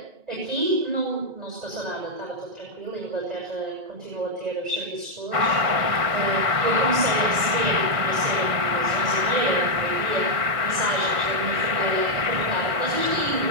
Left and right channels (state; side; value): late; left; 1.6 ms